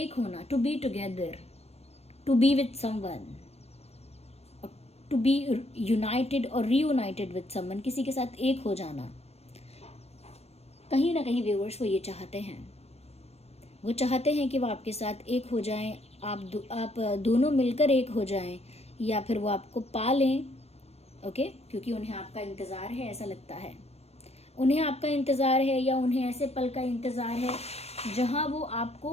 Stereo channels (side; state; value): right; late; 0.30 ms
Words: होना, to be together, to be with someone, to be united और रीयूनाइटेड विद समवन, किसी के साथ एक हो जाना। कहीं ना कहीं व्यूअर्स वो ये चाहते हैं, वो चाहते हैं कि वो आपके साथ एक हो जाएं, आप दोनों मिलकर एक हो जाएं, या फिर वो आपको पा लें। ओके, क्योंकि उन्हें आपका इंतज़ार है, ऐसा लगता है उन्हें आपका इंतज़ार है, या उन्हें ऐसे पल का इंतज़ार है जहां वो